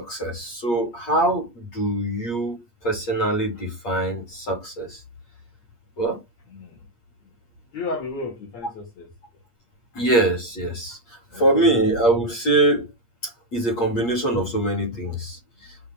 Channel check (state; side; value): late; right; 8.5 ms